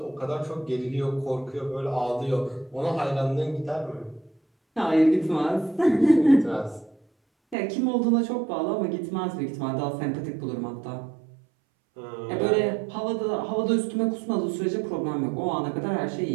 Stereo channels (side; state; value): left; drops out; at 7.6 s